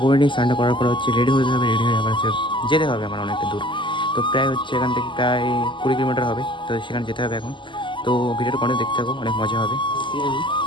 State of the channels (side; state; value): right; late; 0.24 ms